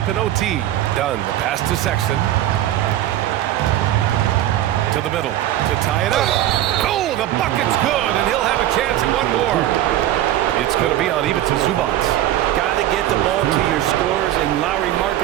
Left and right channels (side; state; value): left; quieter; 13.1 dB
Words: in OT. Dunn, the pass to Sexton. To the middle to tie it up. Oh, the bucket's good, and he'll have a chance at one more. It's going to be on Ivica Zubac. Got to get the ball to your scorers, and Lauri